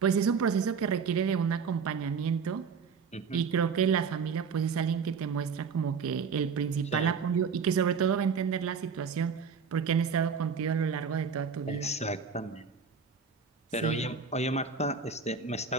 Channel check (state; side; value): quieter; left; 5.8 dB